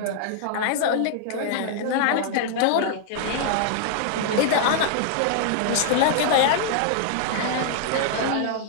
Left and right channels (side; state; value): both; different; correlation -0.01